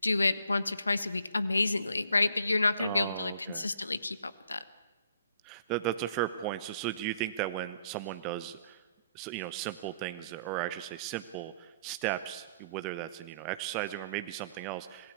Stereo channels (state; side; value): inverted; both; correlation -0.63